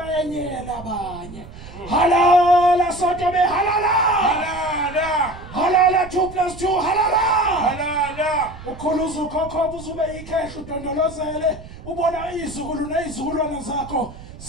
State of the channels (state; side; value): noise; right; rumble, 15 dB below the sound